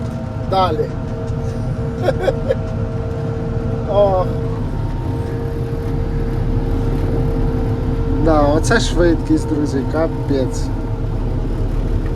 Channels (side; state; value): both; identical; correlation 1.00